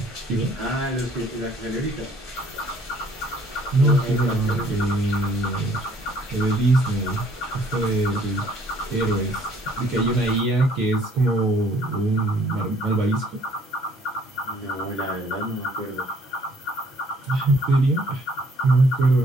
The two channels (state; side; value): normal; both; correlation 0.61